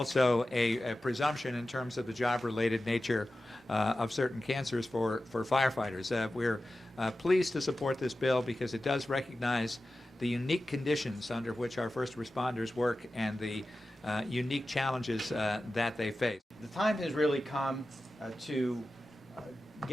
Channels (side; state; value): both; normal; correlation 0.94